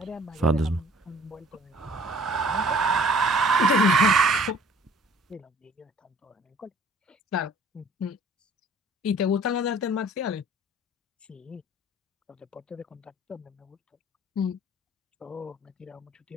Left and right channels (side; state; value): both; normal; correlation 0.52